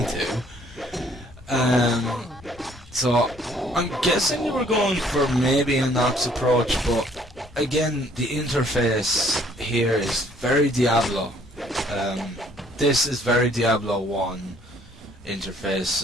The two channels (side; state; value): both; normal; correlation 0.61